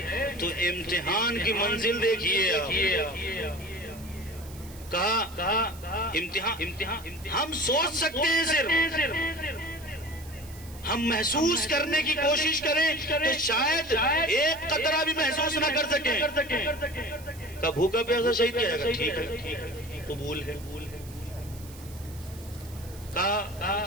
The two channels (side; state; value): right; noise; hiss, 20 dB below the sound